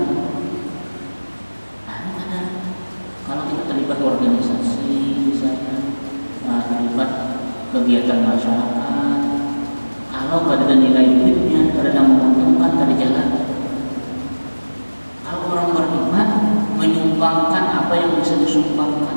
Kalau kita terlibat organisasi, misalnya terlibat kegiatan masyarakat, kalau ada nilai duitnya, ada menguntungkan, ada jalan. Kalau orang beriman menyumbangkan apa yang bisa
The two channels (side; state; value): both; inverted; correlation -1.00